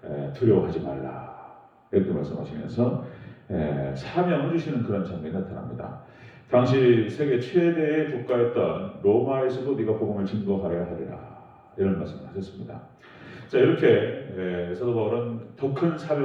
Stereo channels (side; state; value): both; identical; correlation 1.00